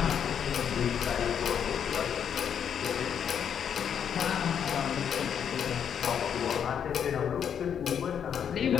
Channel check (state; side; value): quieter; right; 8.2 dB